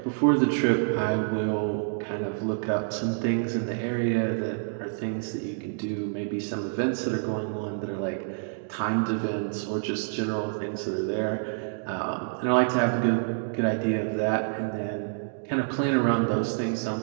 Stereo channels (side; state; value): left; silent; digital silence